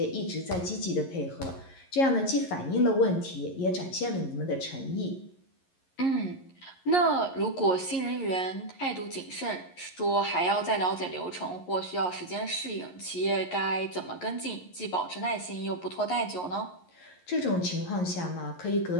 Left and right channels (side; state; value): right; late; 11 ms